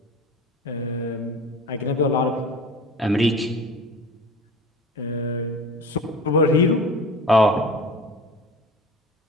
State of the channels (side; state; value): both; normal; correlation 0.37